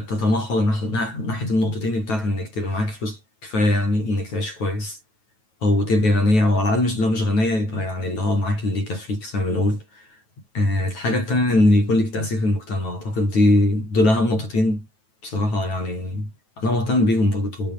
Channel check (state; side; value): late; right; 9.2 ms